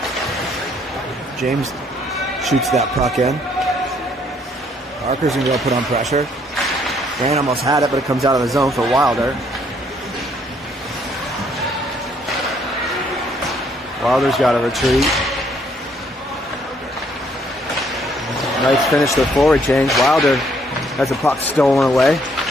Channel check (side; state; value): both; normal; correlation 0.66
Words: James shoots that puck in. Parker's going to put on pressure. Grant almost had it, but it comes out of the zone for Wilder. Wilder's got to retreat. Knights finish their forward change. Wilder has the puck stolen away.